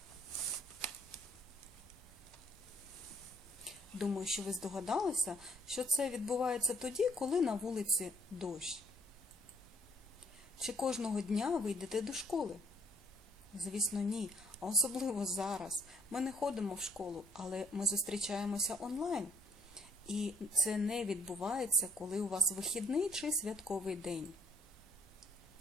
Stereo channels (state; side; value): normal; both; correlation 0.64